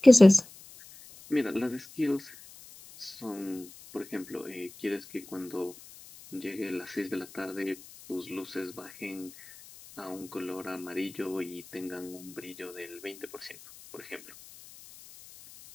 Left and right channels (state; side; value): noise; left; hiss, 20 dB below the sound